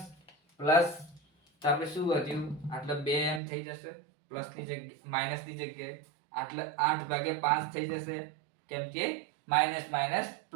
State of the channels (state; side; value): drops out; left; at 3.4 s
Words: પ્લસ, તો આપણે શું વધ્યું? આટલે 2m થઈ જશે પ્લસ ની જગ્યાએ, માઇનસ ની જગ્યાએ. આટલે 8/5 થઈ જશે, કેમ કે માઇનસ માઇનસ